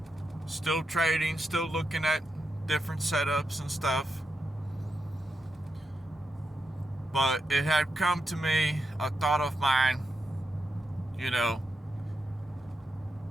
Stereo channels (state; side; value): normal; both; correlation 0.86